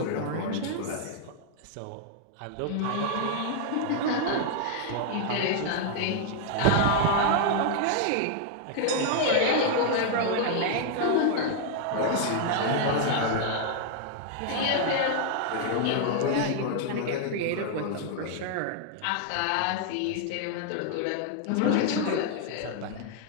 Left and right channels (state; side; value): different; both; correlation 0.00